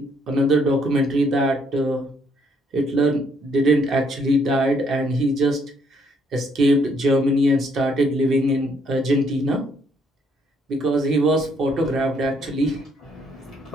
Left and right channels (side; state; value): both; normal; correlation 0.69